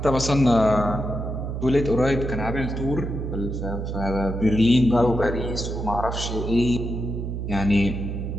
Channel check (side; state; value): right; noise; hum, 4 dB below the sound